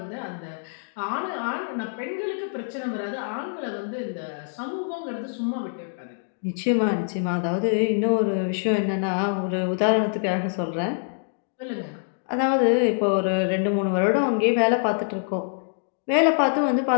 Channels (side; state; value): right; silent; digital silence